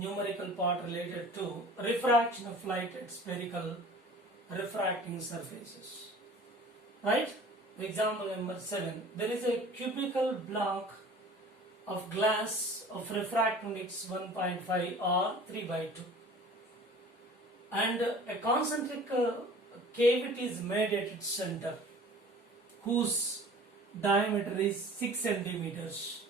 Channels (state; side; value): normal; both; correlation 0.45